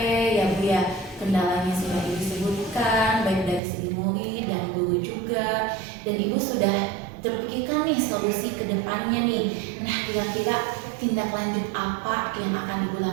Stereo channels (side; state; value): left; drops out; at 3.6 s